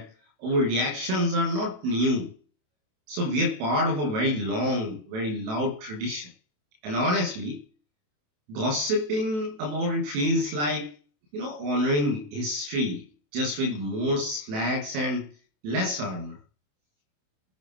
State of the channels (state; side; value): late; left; 27 ms